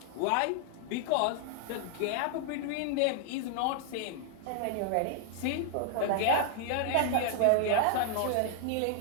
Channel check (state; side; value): different; both; correlation 0.00